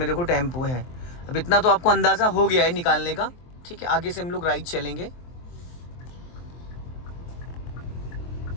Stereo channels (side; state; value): right; late; 23 ms